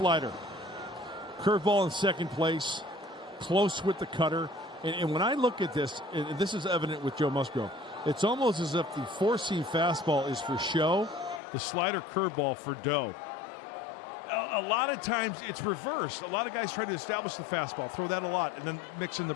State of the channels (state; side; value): drops out; right; at 11.4 s